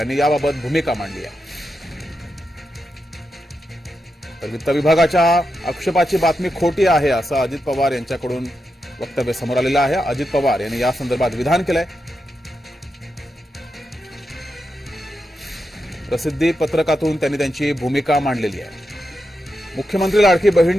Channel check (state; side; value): normal; both; correlation 0.87